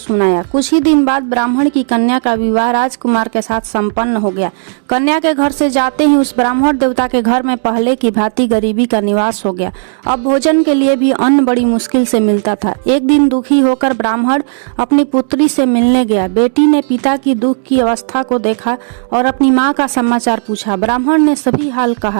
कुछ ही दिन बाद ब्राह्मण की कन्या का विवाह राजकुमार के साथ संपन्न हो गया। कन्या के घर से जाते ही उस ब्राह्मण देवता के घर में पहले की भांति गरीबी का निवास हो गया। अब भोजन के लिए भी अन्न बड़ी मुश्किल से मिलता था। एक दिन दुखी होकर ब्राह्मण अपनी पुत्री से मिलने गया। बेटी ने पिता की दुख की अवस्था को देखा और अपनी माँ का समाचार पूछा। ब्राह्मण ने सभी हाल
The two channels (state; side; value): silent; left; digital silence